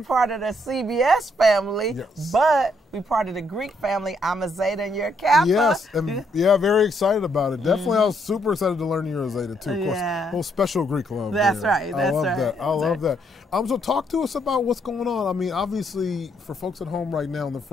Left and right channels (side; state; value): both; normal; correlation 0.73